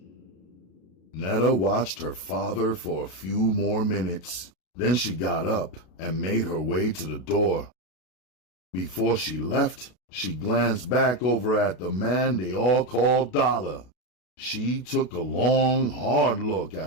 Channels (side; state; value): right; late; 33 ms